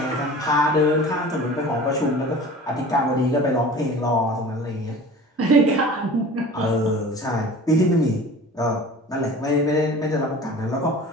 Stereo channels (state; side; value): normal; both; correlation 0.40